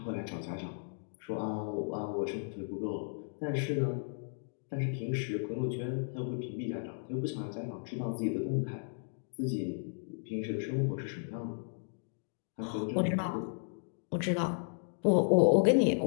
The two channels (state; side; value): silent; right; digital silence